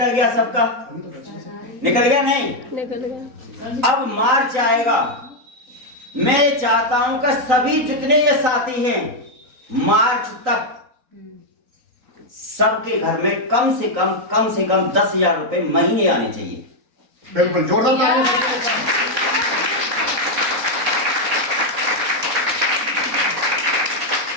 गया, सबका निकल गया, नहीं निकल गया। अब मार्च आएगा। मैं ये चाहता हूं कि सभी जितने ये साथी हैं मार्च तक सबके घर में कम से कम 10,000 रुपए महीने आने चाहिए। बिल्कुल जोरदार तालियां।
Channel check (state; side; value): late; left; 3.9 ms